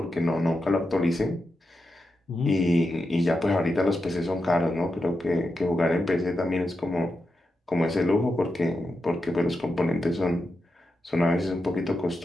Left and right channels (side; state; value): both; normal; correlation 0.88